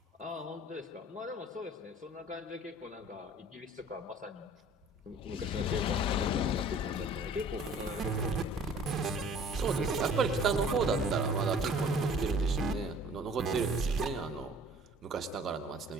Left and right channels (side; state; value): both; normal; correlation 0.50